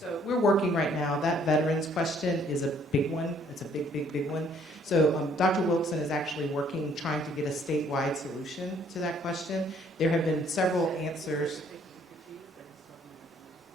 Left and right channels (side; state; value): both; normal; correlation 0.63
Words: we're working right now. That veterans question is a big one. It's a big one. So Dr. Wilson is actually working, trying to get a statewide solution to that question. There have been several answers.